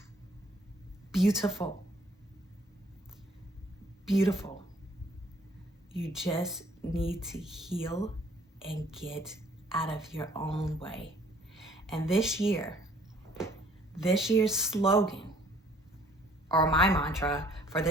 Beautiful. Beautiful. You just need to heal and get out of your own way. And this year's slogan, or my mantra for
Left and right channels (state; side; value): normal; both; correlation 0.59